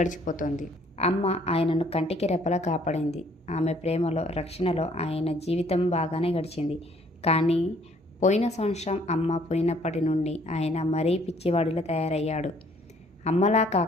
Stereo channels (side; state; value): both; normal; correlation 0.62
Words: అమ్మ ఆయనను కంటికి రెప్పలా కాపాడింది. ఆమె ప్రేమలో, రక్షణలో ఆయన జీవితం బాగానే గడిచింది. కానీ పోయిన సంవత్సరం అమ్మ పోయినప్పటి నుండి ఆయన మరీ పిచ్చివాడిలా తయారయ్యాడు. అమ్మలా